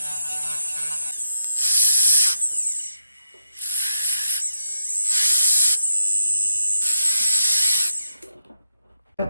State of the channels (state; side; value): inverted; both; correlation -0.82